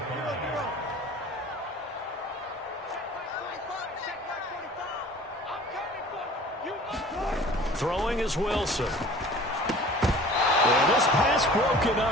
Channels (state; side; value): normal; both; correlation 0.46